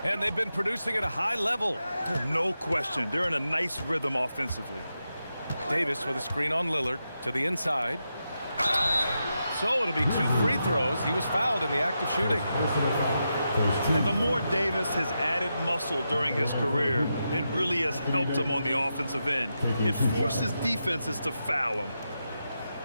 And they've been producing at a high level. No question. They're in a nice rhythm offensively. Davis with a screen on Lillard to the inside. So it'll be 2 free throws. He was fouled in the act of shooting. And the more Davis has added muscle during his career, it really has helped him on the offensive end. It forces defenses to foul him.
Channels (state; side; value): inverted; both; correlation -0.87